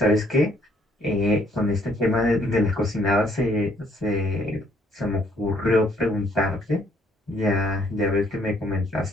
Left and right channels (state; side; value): normal; both; correlation 0.66